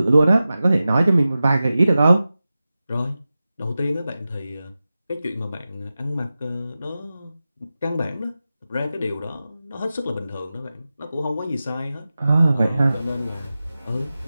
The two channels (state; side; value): inverted; both; correlation -0.94